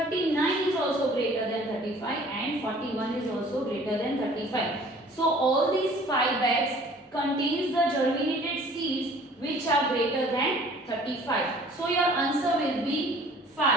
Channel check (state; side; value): normal; both; correlation 0.52